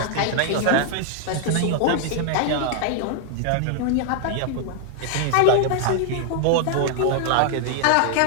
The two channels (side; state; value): both; different; correlation 0.00